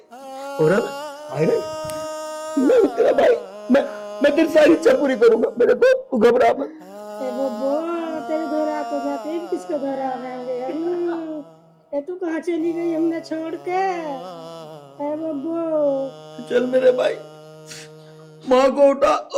और अब आयरन मैं तेरा भाई, मैं तेरी सारी इच्छा पूरी करूंगा मेरे को, तू घबरा मत। तेरे घर आते जाते किसको घर आ गए? तू कहाँ चली गई हमने छोड़ के? चल मेरे भाई, माँ को उठा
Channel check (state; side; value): identical; both; correlation 1.00